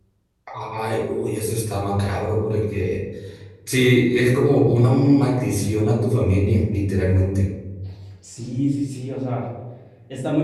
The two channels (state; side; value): identical; both; correlation 1.00